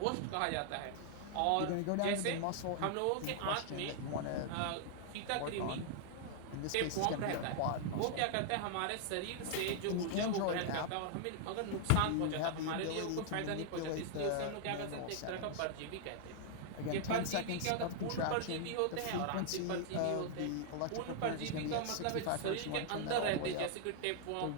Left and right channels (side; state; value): both; different; correlation -0.01